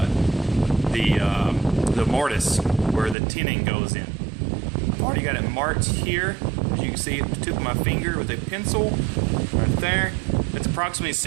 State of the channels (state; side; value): drops out; left; at 3.2 s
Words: the mortise where the tinning goes in. I've already got it marked here, as you can see at the tip of my finger with a pencil right there. It's approximately